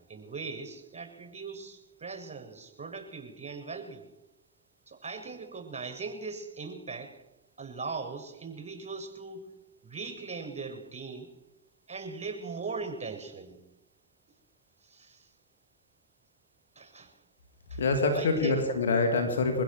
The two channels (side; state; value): both; inverted; correlation -0.35